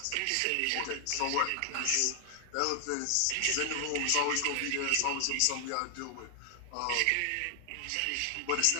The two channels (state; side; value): different; both; correlation 0.00